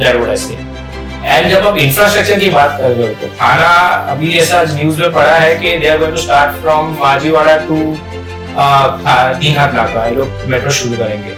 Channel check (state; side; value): identical; both; correlation 1.00